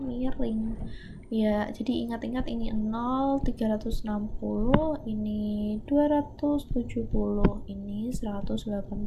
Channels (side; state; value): both; identical; correlation 1.00